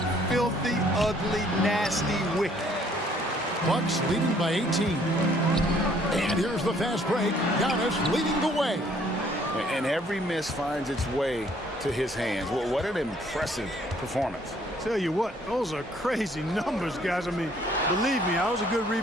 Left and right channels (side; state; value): both; normal; correlation 0.62